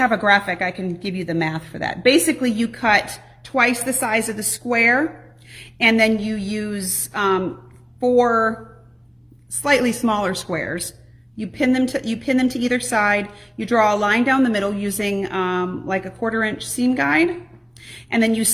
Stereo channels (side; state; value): both; identical; correlation 1.00